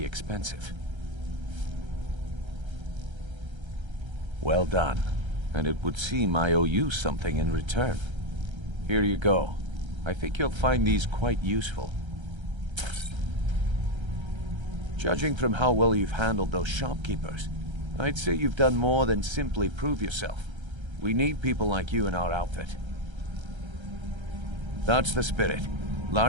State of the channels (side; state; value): left; late; 1.3 ms